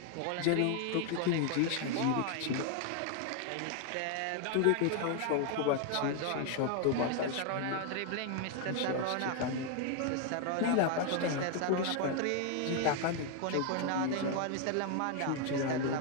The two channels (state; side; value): different; both; correlation 0.00